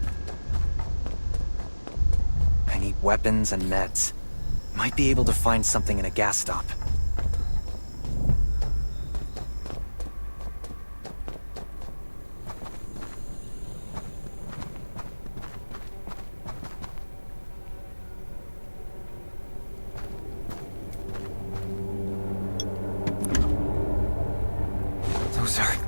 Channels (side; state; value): both; inverted; correlation -1.00